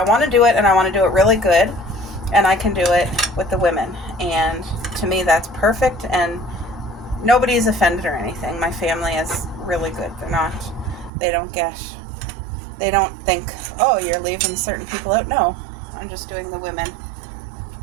want to do it, and I want to do it really good, and I can do it with the women, and to me that's perfect, and nobody's offended or anything. My family is really good. They don't think, oh, you're leaving certain people out. No, I'm just doing the women.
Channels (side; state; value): left; drops out; at 11.1 s